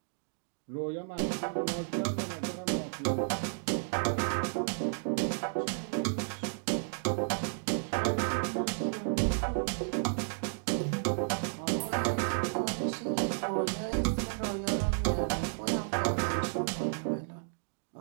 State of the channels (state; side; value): silent; left; digital silence